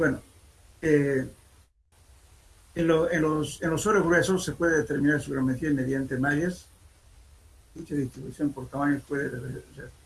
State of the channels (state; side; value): identical; both; correlation 1.00